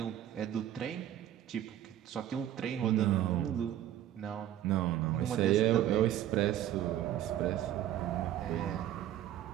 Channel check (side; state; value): left; quieter; 11.9 dB